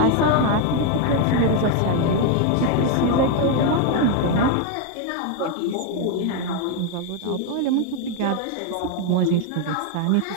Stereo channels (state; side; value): different; both; correlation 0.01